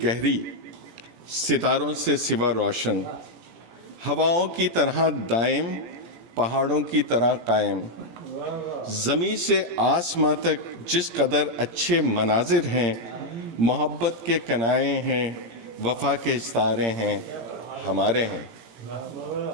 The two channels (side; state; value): left; late; 17 ms